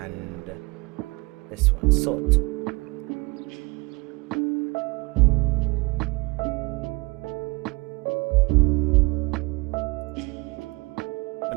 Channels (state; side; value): quieter; left; 25.0 dB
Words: this one, salt.